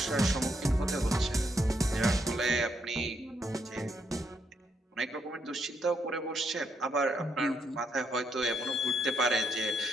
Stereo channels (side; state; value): both; normal; correlation 0.76